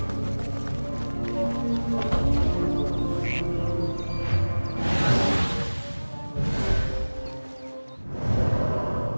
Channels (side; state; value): both; inverted; correlation -1.00